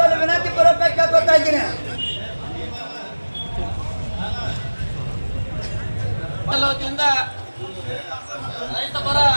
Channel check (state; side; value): inverted; both; correlation -1.00